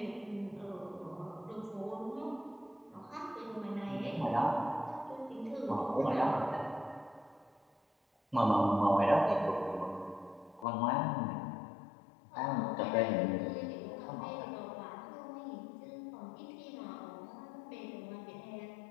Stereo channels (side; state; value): right; drops out; at 10.7 s